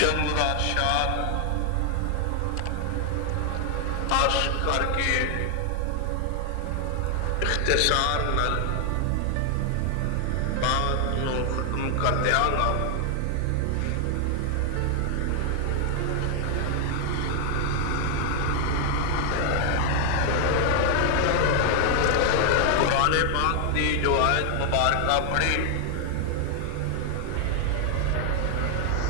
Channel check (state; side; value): different; both; correlation 0.00